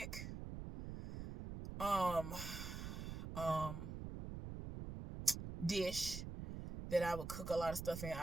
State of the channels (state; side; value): noise; right; rumble, 7 dB below the sound